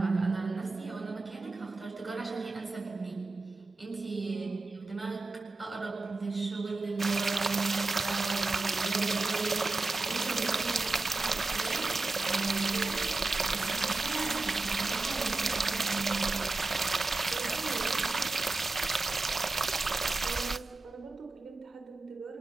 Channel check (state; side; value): quieter; left; 3.5 dB